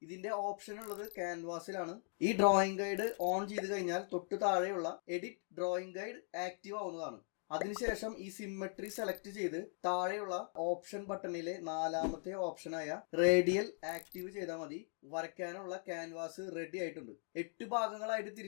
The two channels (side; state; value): right; silent; 51 dB below the other